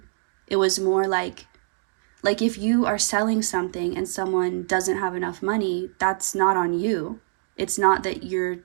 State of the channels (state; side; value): silent; left; digital silence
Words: It was more like if you are selling something and someone doesn't have enough money, that's not on you. It's not that your